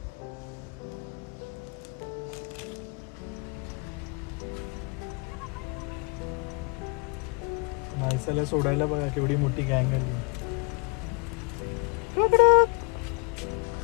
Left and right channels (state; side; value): quieter; right; 33.1 dB